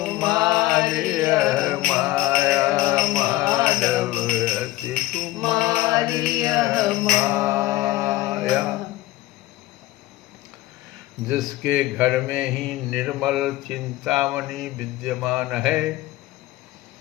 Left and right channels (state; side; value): quieter; right; 17.3 dB